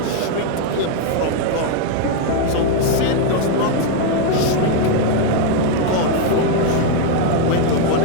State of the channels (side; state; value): both; different; correlation 0.01